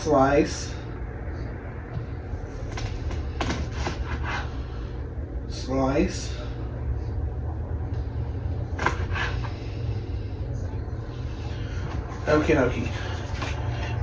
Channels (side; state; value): both; identical; correlation 1.00